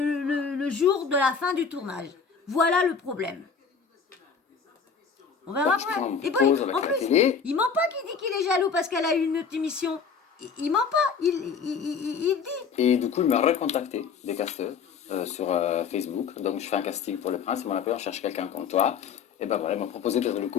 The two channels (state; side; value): quieter; right; 6.0 dB